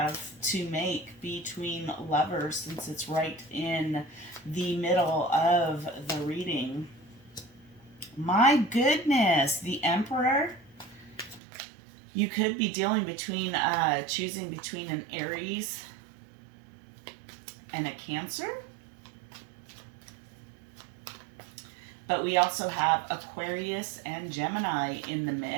to make between lovers, since it's right in the middle of the reading. My goodness, the Emperor. You could be dealing between, choosing between an Aries and a Cancer. But we also have Aquarius and Gemini in the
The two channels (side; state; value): left; drops out; at 11.4 s